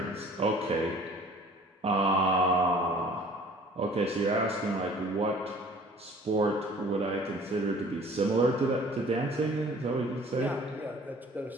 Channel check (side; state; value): both; normal; correlation 0.50